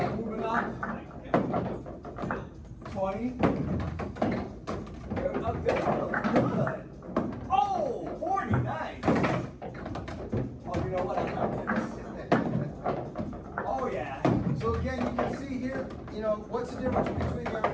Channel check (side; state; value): both; identical; correlation 1.00